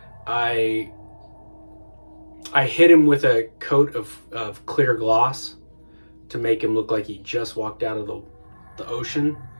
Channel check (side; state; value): both; inverted; correlation -1.00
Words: I hit him with a coat of clear gloss to make him look like he just walked out of the ocean.